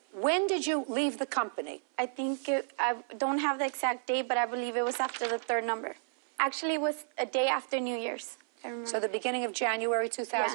When did you leave the company? I think I don't have the exact date, but I believe it was after the 3rd number. Actually, it was a day after New Year's. I remember. So the beginning of January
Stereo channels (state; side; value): silent; left; 57 dB below the other